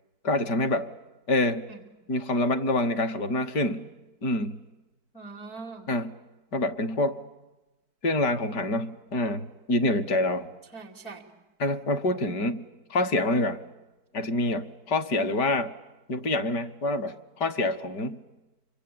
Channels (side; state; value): right; late; 4.6 ms